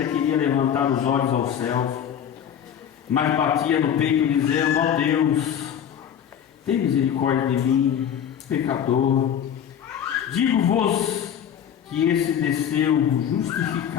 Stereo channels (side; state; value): right; quieter; 9.0 dB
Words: queria levantar os olhos aos céus, mas batia no peito, dizendo: ó Deus, tem misericórdia de mim, pecador. Digo-vos que esse desceu